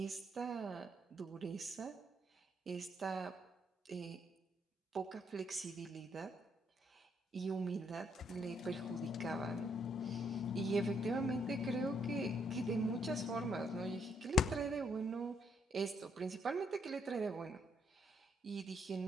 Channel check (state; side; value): normal; both; correlation 0.72